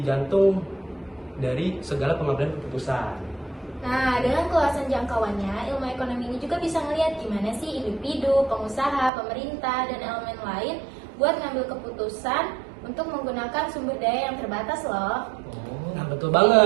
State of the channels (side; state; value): left; drops out; at 9.1 s